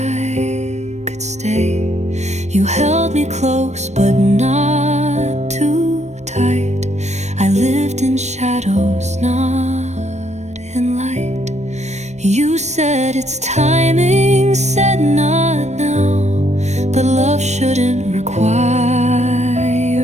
could stay. You held me close, but not too tight. I lived in shadows, not in light. You said it's timing, said not now, but love shouldn't require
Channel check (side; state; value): left; late; 0.33 ms